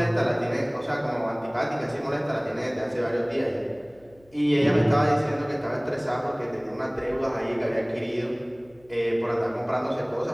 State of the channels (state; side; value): noise; left; hum, 29 dB below the sound